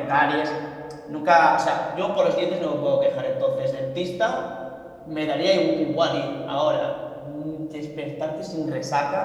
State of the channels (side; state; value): both; identical; correlation 1.00